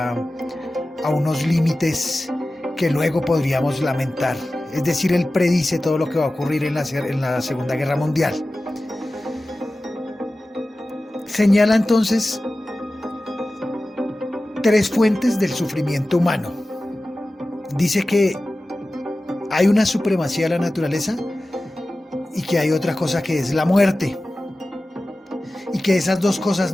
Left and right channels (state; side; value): normal; both; correlation 0.96